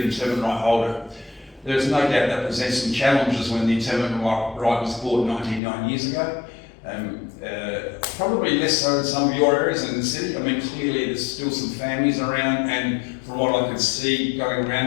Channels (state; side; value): drops out; right; at 5.6 s